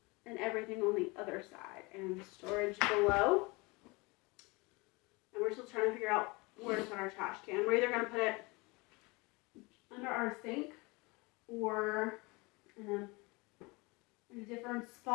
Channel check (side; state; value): right; quieter; 25.9 dB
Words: and everything on the other side, and storage below. And we're still trying to figure out where to put our trash can. We're either gonna put it under our sink or in a different